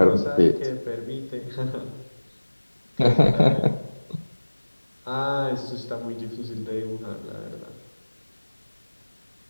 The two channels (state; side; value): inverted; both; correlation -1.00